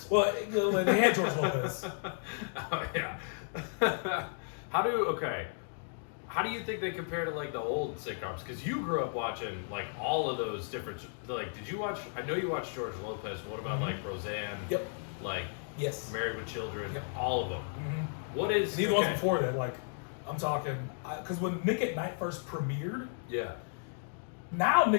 Well, they had George Lopez. Oh yeah. How do you think they compare to like the old sitcoms? Because you grew up watching like all of those different. Like, did you watch? I know you watched George Lopez. What about like Roseanne? Yep. Like Yes. Married with Children. Yep. All of them. Mm-hmm. What is? And even ones before that, like I'm talking, because when Nick at Night first premiered. Yeah. Now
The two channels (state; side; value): silent; right; digital silence